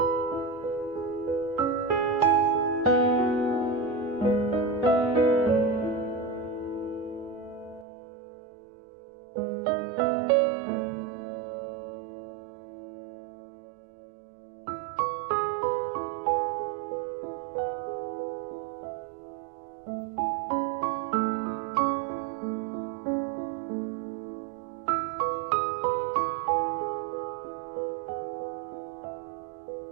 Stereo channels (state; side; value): drops out; left; at 7.9 s